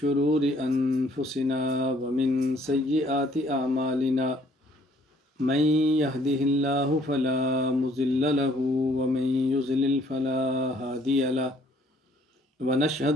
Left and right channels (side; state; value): both; normal; correlation 0.62